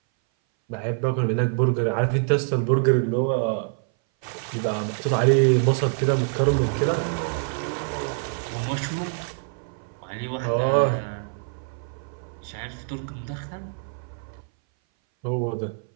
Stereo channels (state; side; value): silent; left; 59 dB below the other